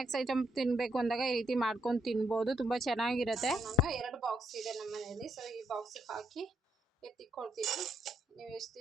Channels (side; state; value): both; normal; correlation 0.76